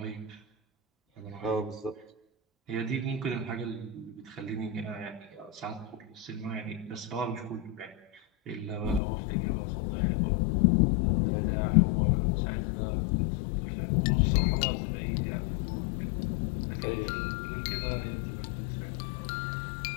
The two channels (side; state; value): right; drops out; at 9.0 s